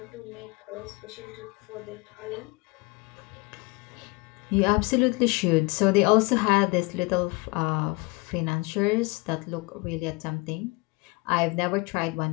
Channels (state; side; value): quieter; right; 26.6 dB